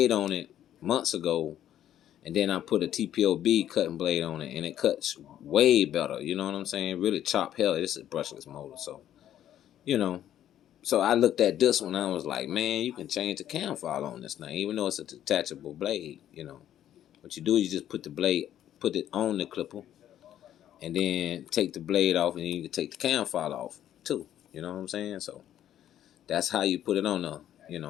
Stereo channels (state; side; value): quieter; right; 11.3 dB